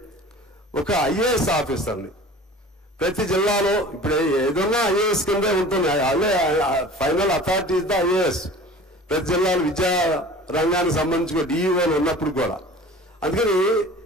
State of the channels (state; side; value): normal; both; correlation 0.42